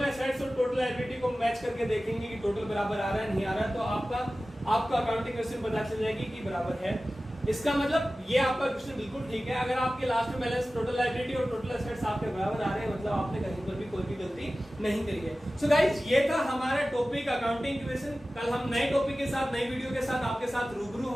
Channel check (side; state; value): both; normal; correlation 0.96